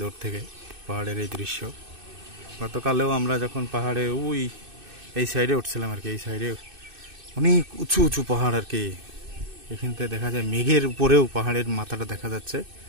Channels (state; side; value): late; left; 2.6 ms